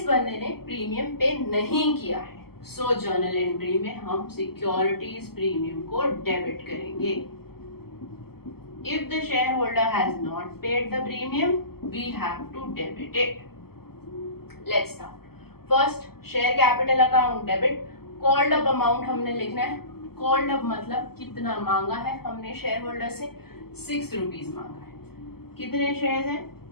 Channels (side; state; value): right; late; 0.95 ms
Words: बंदे ने प्रीमियम पे नहीं किया है, सो जर्नल एंट्री में हम सिक्योरिटीज प्रीमियम को डेबिट करेंगे. If the shareholder has not paid the premium, we have to debit it. Let's start. First, share capital account debit. Called up amount हमने लिखना है. Called up मतलब कितना मांगा है हमने शेयर होल्डर से, 6 rupees मांगा है. कितने शेयर्स हैं?